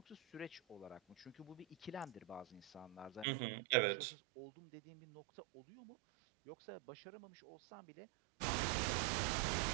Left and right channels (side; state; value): left; drops out; at 3.2 s